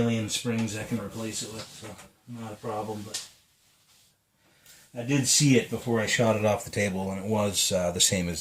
springs I can replace it with, so not a problem. But I did see it before I shot it off the table, and it was the same as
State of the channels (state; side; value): identical; both; correlation 1.00